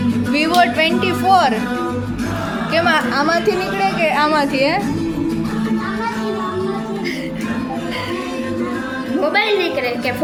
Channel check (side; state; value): both; identical; correlation 1.00